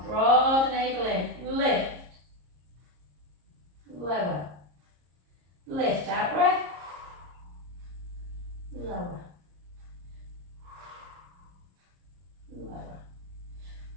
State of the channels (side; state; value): left; late; 34 ms